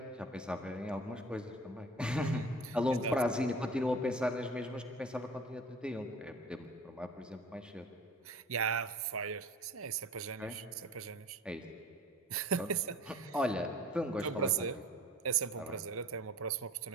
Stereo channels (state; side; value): normal; both; correlation 0.43